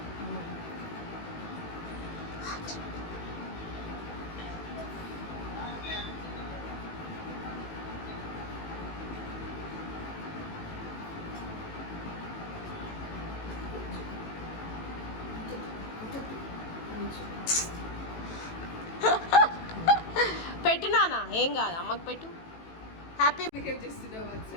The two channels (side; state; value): right; late; 18 ms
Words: పెట్టినానా ఏం కాదు, అమ్మకి పెట్టు. హ్యాపీ బిహేవ్ చేస్తున్నావు